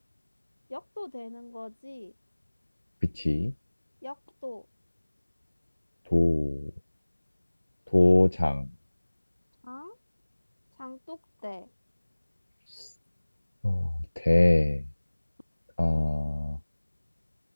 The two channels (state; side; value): inverted; both; correlation -1.00